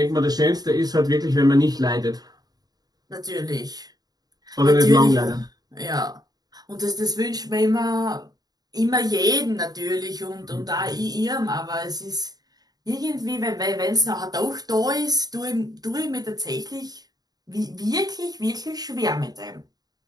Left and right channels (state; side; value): late; left; 0.19 ms